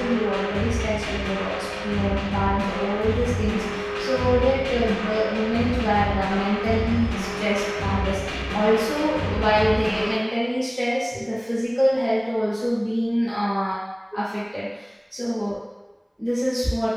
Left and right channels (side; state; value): both; identical; correlation 1.00